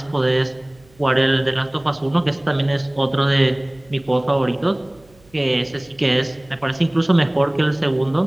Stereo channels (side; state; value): right; noise; hum, 29 dB below the sound